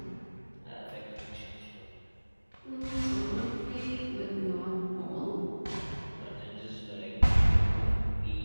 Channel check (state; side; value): inverted; both; correlation -1.00